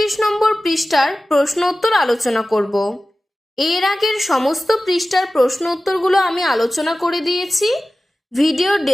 নম্বর পৃষ্ঠার প্রশ্ন উত্তর আলোচনা করব। এর আগের সমস্ত পৃষ্ঠার প্রশ্ন উত্তরগুলো আমি আলোচনা করে দিয়েছি। ভিডিওর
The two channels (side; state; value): both; normal; correlation 0.95